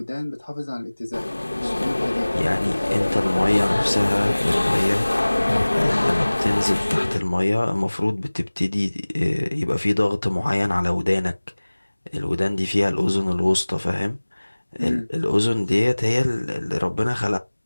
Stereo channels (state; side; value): inverted; both; correlation -1.00